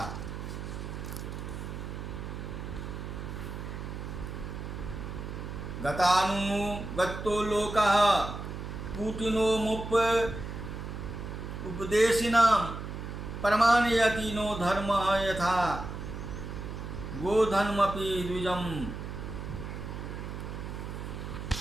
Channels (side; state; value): right; noise; hum, 7 dB below the sound